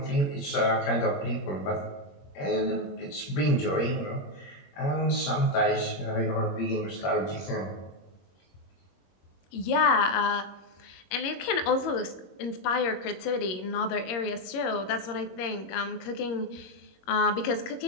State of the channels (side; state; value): right; late; 22 ms